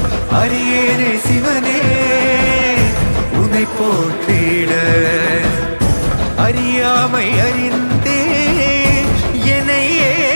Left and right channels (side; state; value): both; inverted; correlation -1.00